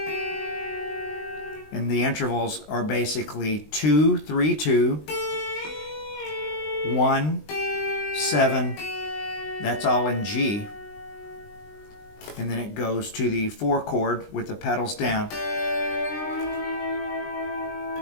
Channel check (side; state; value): right; late; 20 ms